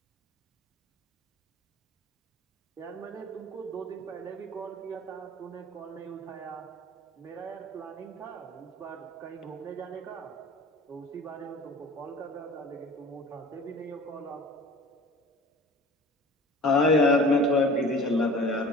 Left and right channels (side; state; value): both; normal; correlation 0.42